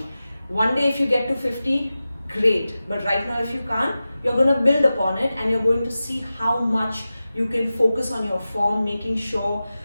One day if you get to 50, great. But right now if you can't, you're going to build upon it, and you're going to see how much you can focus on your form, making sure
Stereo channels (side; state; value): both; inverted; correlation -0.94